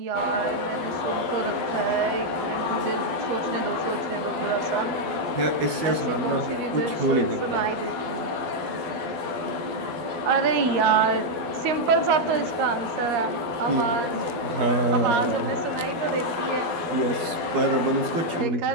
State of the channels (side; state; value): left; late; 12 ms